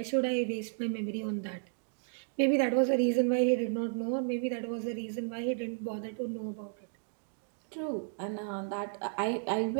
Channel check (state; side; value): silent; left; digital silence